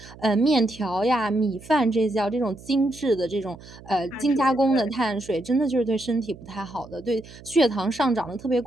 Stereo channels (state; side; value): noise; right; hum, 19 dB below the sound